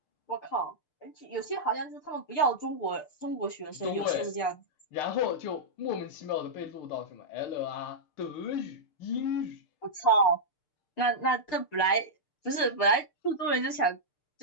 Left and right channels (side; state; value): right; late; 6.7 ms